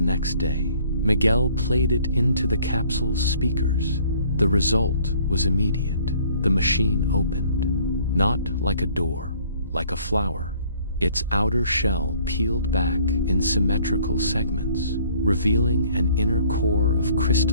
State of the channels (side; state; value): both; inverted; correlation -0.57